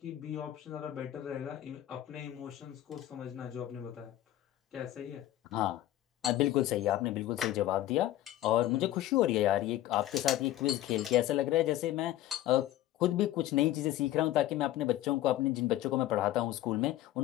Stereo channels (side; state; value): right; quieter; 13.9 dB